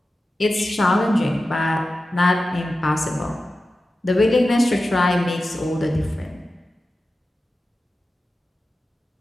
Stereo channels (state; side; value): normal; both; correlation 0.93